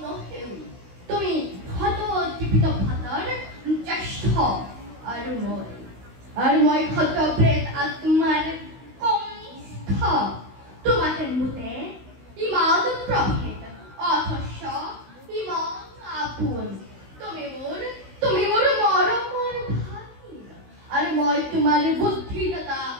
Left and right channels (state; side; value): late; left; 16 ms